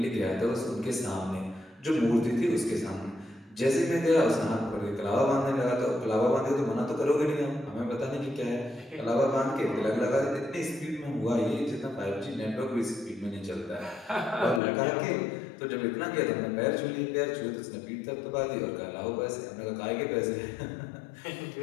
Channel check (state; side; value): drops out; right; at 14.6 s